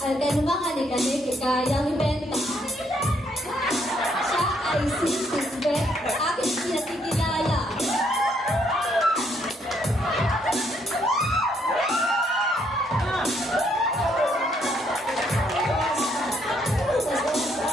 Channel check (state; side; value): normal; both; correlation 0.71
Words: At anumang anik-anik, kayang ibenta. Siya ay sisisbet, aking pinatikilala.